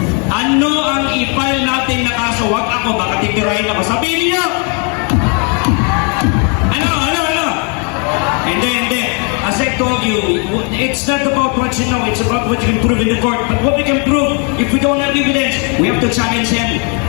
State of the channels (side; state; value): right; quieter; 37.2 dB